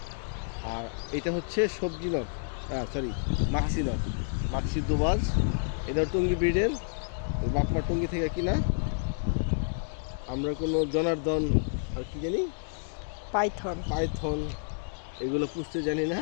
আর এটা হচ্ছে সবজি not, sorry Maksi not, Maksi দুবাজ। এটা টঙ্গী ব্রিডের, বাপমা টঙ্গী থেকে কিনা। আমরা কোনো জনার্দন আর কি জানি, পাইথন পাইথন এগুলো পুষতে জানি না।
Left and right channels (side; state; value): right; silent; digital silence